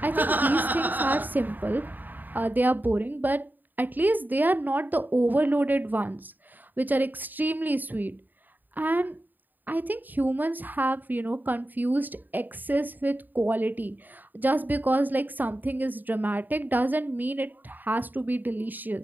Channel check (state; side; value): late; left; 0.088 ms